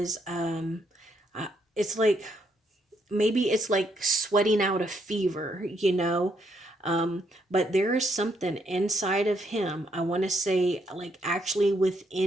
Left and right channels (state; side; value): normal; both; correlation 0.75